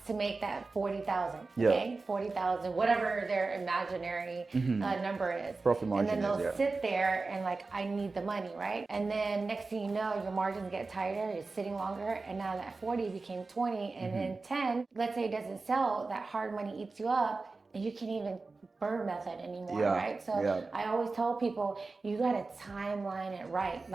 to make that 40,000, okay? 40,000, whatever their imaginary number is. Profit margin, and then they'll sit there and like, I need the money, right? And then next thing you know, your margins get tighter, you're sitting longer, and now that 40 became 20, and then 10, let's say it doesn't sell, that hard money eats you up, and you can't even burn method anymore, right? So I always tell people, you gotta timeline it right.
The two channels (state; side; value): quieter; left; 3.8 dB